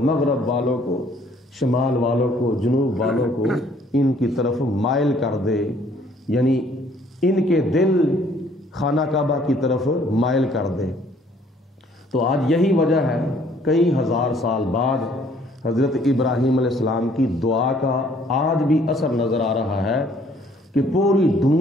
مغرب والوں کو، شمال والوں کو، جنوب والوں کو ان کی طرف مائل کر دے، یعنی ان کے دل خانہ کعبہ کی طرف مائل کر دے۔ تو آج یہی وجہ ہے کئی ہزار سال بعد حضرت ابراہیم علیہ السلام کی دعا کا آج بھی اثر نظر آ رہا ہے کہ پوری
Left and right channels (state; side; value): normal; both; correlation 0.61